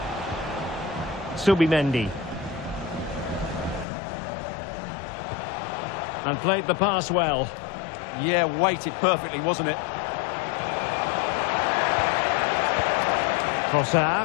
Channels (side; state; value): right; drops out; at 3.9 s